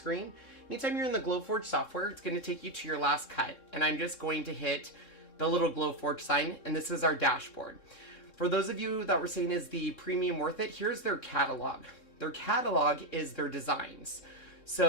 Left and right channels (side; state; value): right; late; 3.7 ms